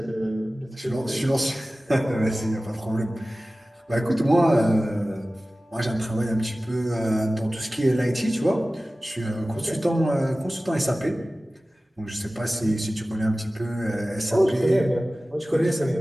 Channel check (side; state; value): both; normal; correlation 0.97